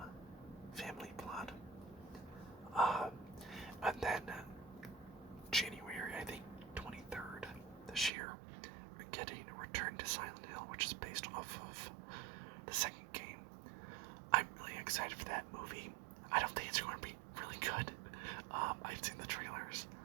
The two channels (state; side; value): drops out; left; at 8.1 s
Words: family plot. And then January, I think 23rd this year, we're getting a Return to Silent Hill, which is based off of the second game. I'm really excited for that movie. I don't think it's going to be really good. I've seen the trailers.